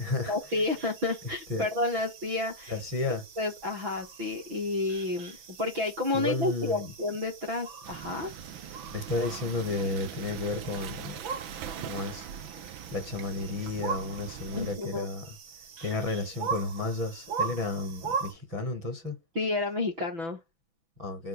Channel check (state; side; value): late; left; 6.0 ms